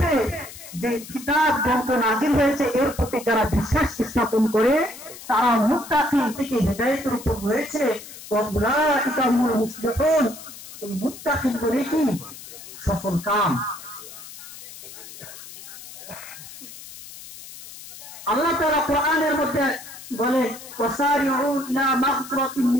যে কিতাব গ্রন্থ নাযিল হয়েছে এর প্রতি যারা বিশ্বাস স্থাপন করে তারা মুত্তাকিন থেকে হেদায়েতের উপর রয়েছে। ওয়াউলাইকা হুমুল মুফলিহুন, এই মুত্তাকিন বলে কি সফল কাম। আল্লাহ তাআলা কোরআনের মধ্যে বলে ওয়াসারিউ ইলা মাগফিরাতিন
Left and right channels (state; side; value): noise; left; hiss, 15 dB below the sound